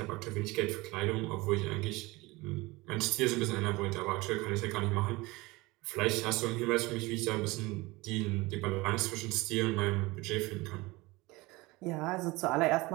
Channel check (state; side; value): quieter; left; 22.2 dB